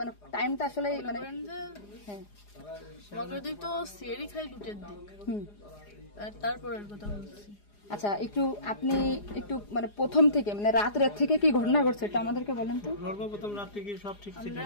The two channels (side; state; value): right; late; 4.9 ms